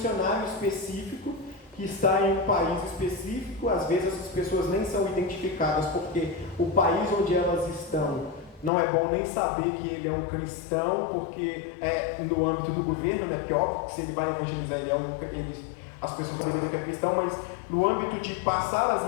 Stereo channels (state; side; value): drops out; right; at 8.7 s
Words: específico que está em um país específico. Às vezes as pessoas nem são identificadas porque o país onde elas estão não é bom nem saber que ele é um cristão, porque é no âmbito do governo, né? Porque óbvio que se ele vai evangelizar, as pessoas vão saber que é cristão, mas no âmbito de passar